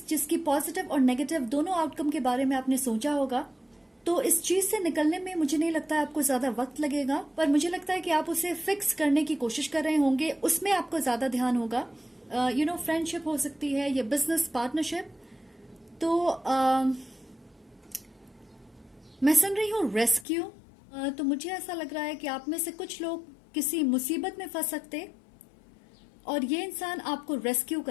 जिसकी पॉजिटिव और नेगेटिव दोनों आउटकम के बारे में आपने सोचा होगा। तो इस चीज से निकलने में मुझे नहीं लगता है आपको ज्यादा वक्त लगेगा, पर मुझे लगता है कि आप उसे फिक्स करने की कोशिश कर रहे होंगे, उसमें आपको ज्यादा ध्यान होगा। फ्रेंडशिप हो सकती है या बिजनेस पार्टनरशिप। तो मैं सुन रही हूँ रेस्क्यू। तो मुझे ऐसा लग रहा है कि आप में से कुछ लोग किसी मुसीबत में फंस सकते, और ये इंसान आपको रेस्क्यू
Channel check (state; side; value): drops out; right; at 20.2 s